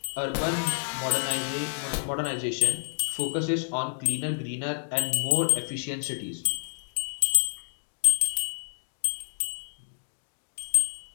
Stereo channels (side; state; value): right; silent; digital silence